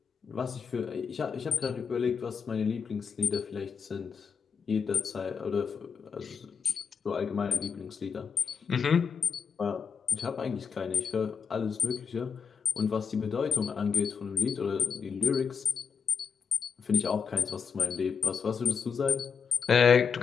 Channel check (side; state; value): right; quieter; 6.4 dB